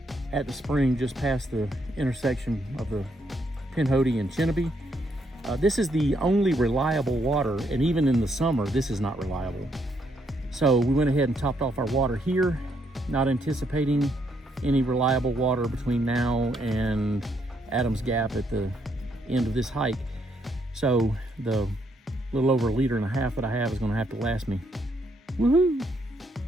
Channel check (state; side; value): normal; both; correlation 0.74